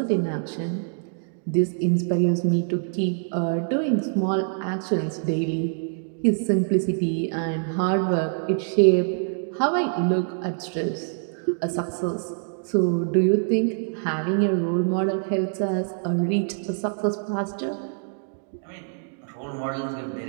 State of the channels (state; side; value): silent; left; digital silence